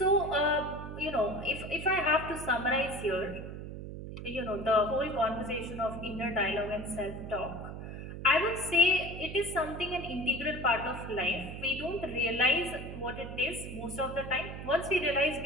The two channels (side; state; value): right; noise; hum, 9 dB below the sound